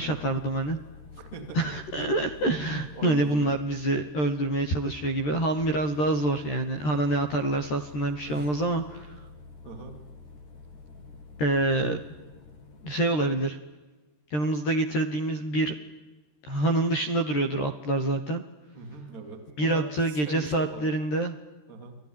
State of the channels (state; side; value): late; right; 13 ms